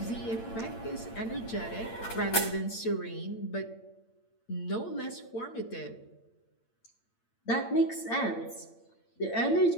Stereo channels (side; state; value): right; late; 8.8 ms